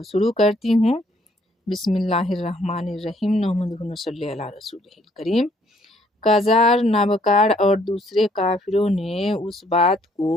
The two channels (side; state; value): both; normal; correlation 0.66